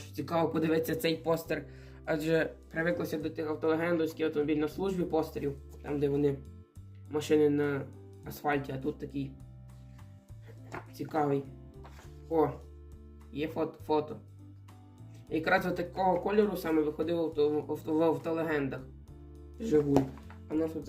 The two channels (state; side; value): identical; both; correlation 1.00